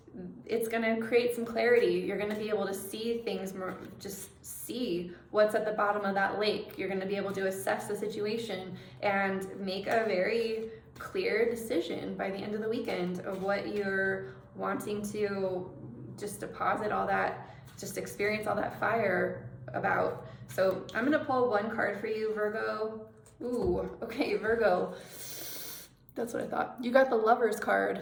it's going to create some clarity. You're going to be able to see things more, just see what's at the bottom of that lake. You're going to be able to assess the situation and make a very clear decision by the end of the weekend of what you're wanting to just deposit all that, just experience all that fire about. So I'm going to pull one card for you, Virgo. Ooh, okay, Virgo. That's what I thought. You got the Lovers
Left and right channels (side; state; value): both; identical; correlation 1.00